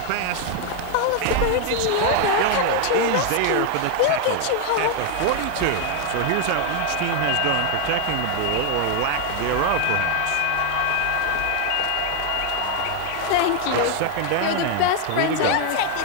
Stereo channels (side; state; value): both; different; correlation 0.01